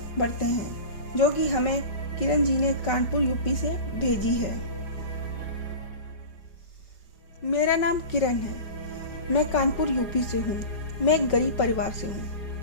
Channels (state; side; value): late; right; 4.9 ms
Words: बढ़ते हैं, जो कि हमें किरण जी ने कानपुर यूपी से भेजी है। मेरा नाम किरण है। मैं कानपुर यूपी से हूँ। मैं एक गरीब परिवार से